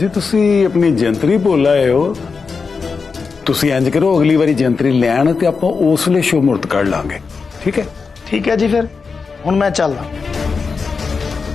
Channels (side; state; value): right; quieter; 5.0 dB